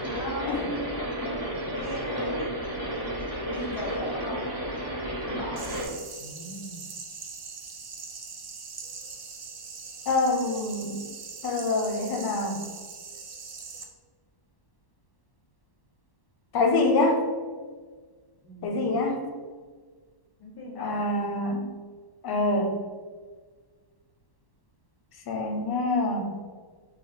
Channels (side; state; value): right; late; 1.1 ms